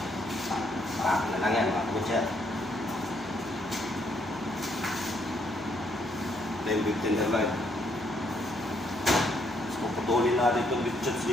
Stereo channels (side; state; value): left; noise; hum, 22 dB below the sound